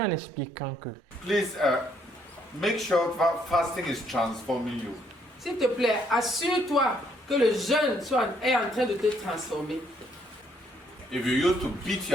en expliquant que Please make sure fasting is transforming you. S'il te plaît, assure-toi que le jeûne est en train de te transformer. If you used to beat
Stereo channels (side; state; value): both; normal; correlation 0.69